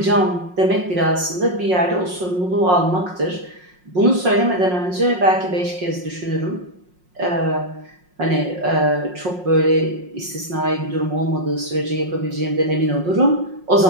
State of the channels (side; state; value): left; late; 5.5 ms